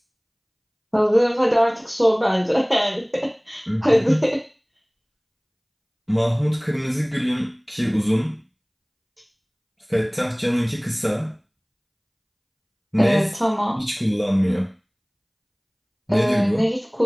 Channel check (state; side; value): identical; both; correlation 1.00